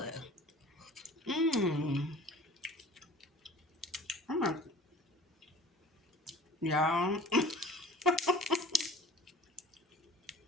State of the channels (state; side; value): normal; both; correlation 0.44